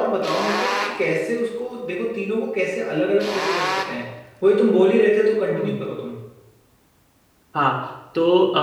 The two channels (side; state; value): both; identical; correlation 1.00